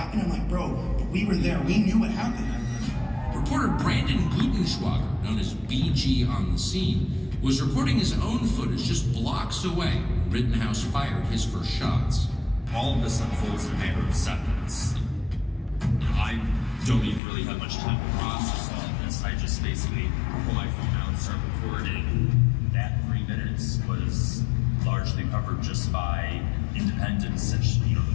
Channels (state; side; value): drops out; right; at 17.2 s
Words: I'm like, bro, we were there. We knew what happened. Reporter Brandon Gutenschwager, known as BG on the scene, was recording his own footage just blocks away when Rittenhouse fired his first shots. All of this unfolds in a matter of seconds. I don't even really have much time to process all of this. I just basically pull my phone out and start recording. That 3 minutes was largely covered just by independents, since the